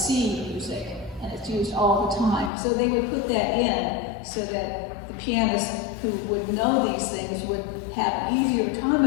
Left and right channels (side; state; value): right; drops out; at 2.5 s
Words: music, and it's used all the time. So they would put that in so that the pianists who would know these things would have an easier time